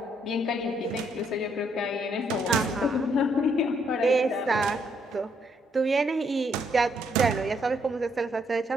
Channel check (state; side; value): normal; both; correlation 0.72